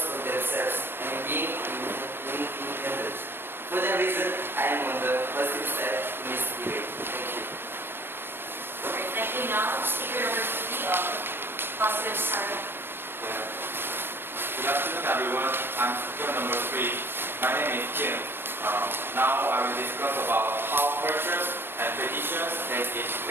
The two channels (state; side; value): late; left; 0.10 ms